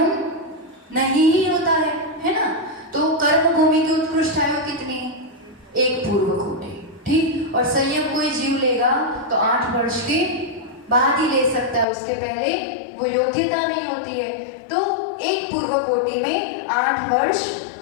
नहीं ही होता है ना। तो कर्म भूमि की उत्कृष्ट आयु कितनी, 1 पूर्व कोटि, ठीक। और संयम कोई जीव लेगा तो 8 वर्ष के बाद ही ले सकता है, उसके पहले वो योग्यता नहीं होती है। तो एक पूर्व कोटि में 8 वर्ष,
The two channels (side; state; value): right; drops out; at 11.9 s